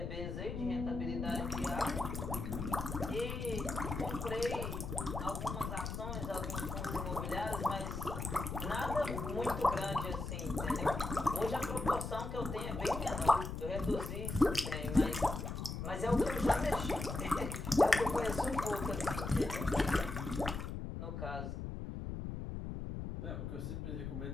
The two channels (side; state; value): left; noise; rumble, 5 dB below the sound